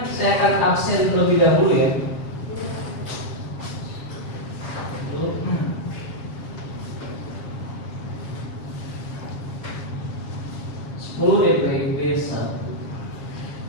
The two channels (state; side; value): late; right; 7.4 ms